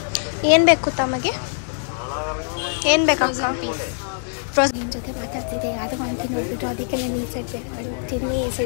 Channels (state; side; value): silent; right; 64 dB below the other